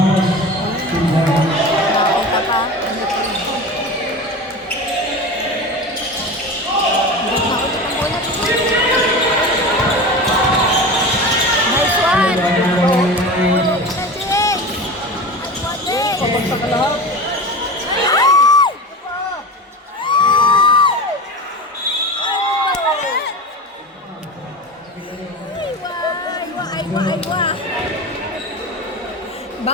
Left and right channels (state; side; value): normal; both; correlation 0.29